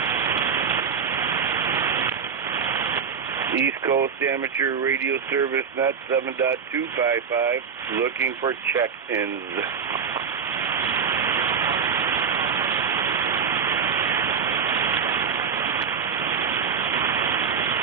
East Coast Amateur Radio Service Net 7.255 looking for check-ins.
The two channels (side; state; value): left; quieter; 6.6 dB